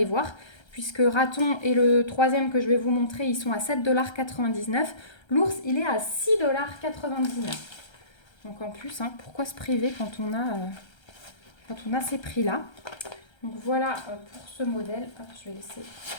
voir, puisque raton et le troisième que je vais vous montrer, ils sont à 7,99 $. L'ours, il est à 6,99 $. Donc en plus, hein, pourquoi se priver quand on a ces prix-là? Donc voilà pour ce modèle. Hop, je vais laisser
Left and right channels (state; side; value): late; right; 1.3 ms